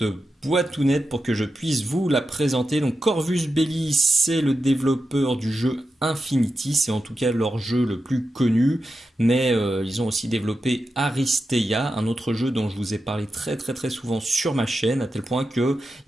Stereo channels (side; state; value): both; normal; correlation 0.90